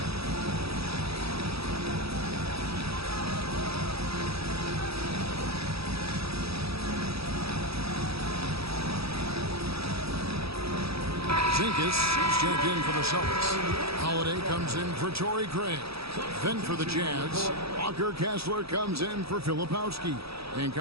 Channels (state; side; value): late; left; 0.77 ms